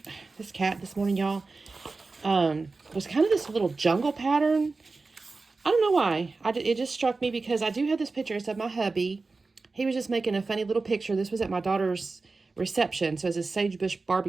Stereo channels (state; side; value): quieter; left; 3.8 dB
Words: this cat this morning, y'all, was kind of this little jungle pattern. I don't know why. It just struck me because I do have this picture. It's of my hubby. He was just making a funny little picture. This was at my daughter's reception. So it's a sagebush